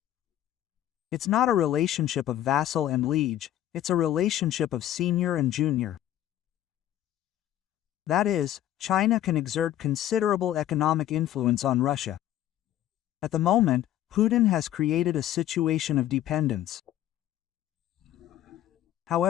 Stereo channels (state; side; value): quieter; right; 12.4 dB